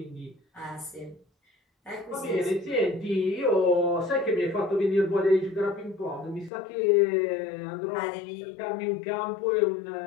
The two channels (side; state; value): right; drops out; at 6.5 s